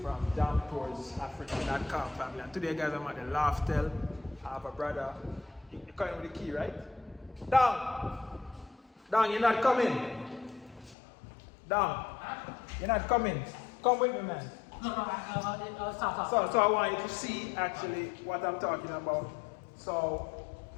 from DamToursAfrica.com family. And today, guys, I'm at the Loftel. I have a brother. You're coming with the key, right? Down! Down, you're not coming. Down. You're not coming. Come with me, man. Stop. So I want you to see actually what I'm talking about. So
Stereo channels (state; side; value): drops out; right; at 11.0 s